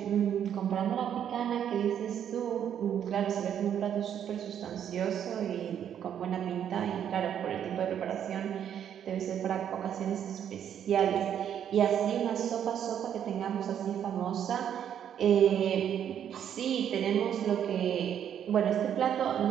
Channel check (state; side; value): quieter; left; 9.3 dB